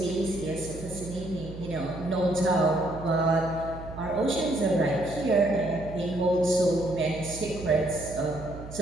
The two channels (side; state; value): right; noise; hum, 12 dB below the sound